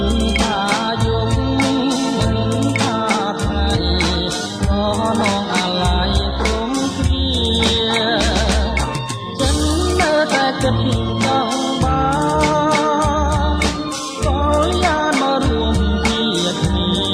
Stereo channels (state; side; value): identical; both; correlation 1.00